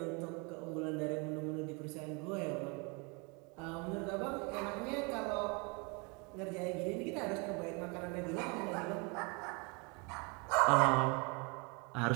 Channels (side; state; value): left; quieter; 31.2 dB